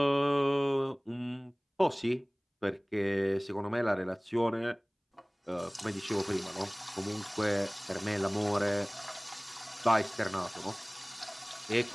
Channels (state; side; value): identical; both; correlation 1.00